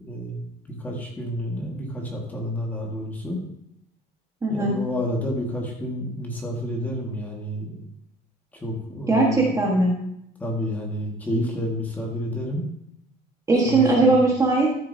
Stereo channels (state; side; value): normal; both; correlation 0.53